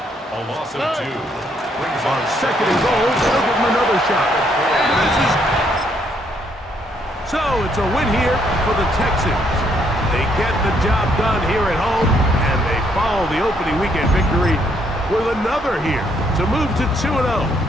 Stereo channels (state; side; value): normal; both; correlation 0.71